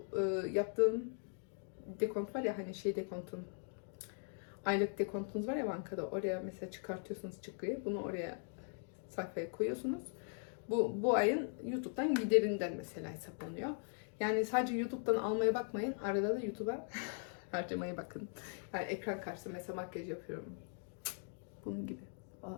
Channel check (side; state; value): right; silent; 51 dB below the other